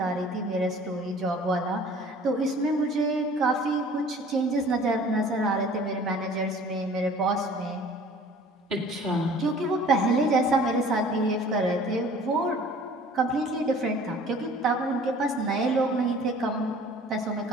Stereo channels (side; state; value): both; normal; correlation 0.49